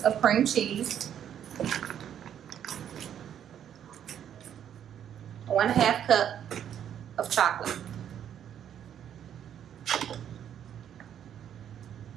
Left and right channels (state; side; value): quieter; left; 9.6 dB